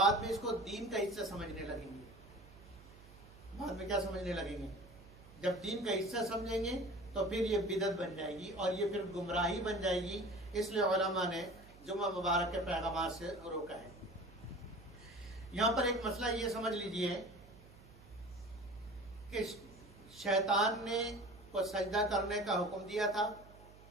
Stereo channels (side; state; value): right; noise; hum, 21 dB below the sound